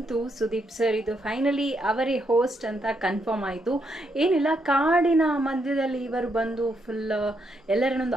ಸುದೀಪ್ ಸರ್ ಇದು ಫೈನಲಿ ಅವರೇ ಹೋಸ್ಟ್ ಅಂತ ಕನ್ಫರ್ಮ್ ಆಯಿತು. ಏನಿಲ್ಲ, ಕಾಡಿನ ಮಧ್ಯದಲ್ಲಿ ಇವರು ಬಂದು ಫುಲ್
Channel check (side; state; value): both; normal; correlation 0.78